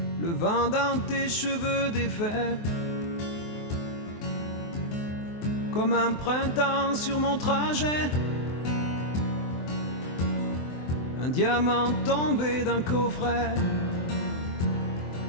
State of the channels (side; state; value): right; late; 23 ms